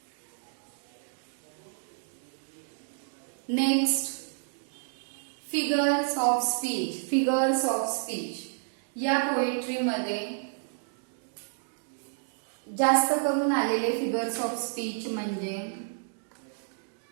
Next figures of speech. Figures of speech या पोएट्री मध्ये जास्त करून आलेले फिगर्स ऑफ स्पीच म्हणजे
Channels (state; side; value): silent; left; digital silence